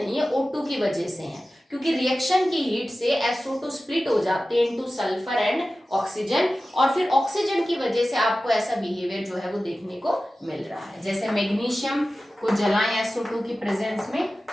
है, O2 की वजह से है, क्योंकि रिएक्शन की हीट से SO2 स्प्लिट हो जाते हैं इनटू सल्फर एंड ऑक्सीजन, और फिर ऑक्सीजन की वजह से आपको ऐसा बिहेवियर जो है वो देखने को मिल रहा है। जैसे मैग्नीशियम को जलाएं SO2 की प्रेजेंस में,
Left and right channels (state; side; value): normal; both; correlation 0.95